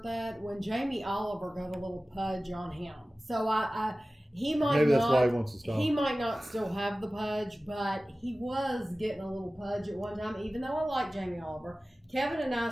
that when Jamie Oliver got a little pudge on him. So he might maybe that's why he wants to stop. He might not still have the pudge, but he was getting a little pudge at one time, even though I like Jamie Oliver. Kevin and I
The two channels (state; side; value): normal; both; correlation 0.97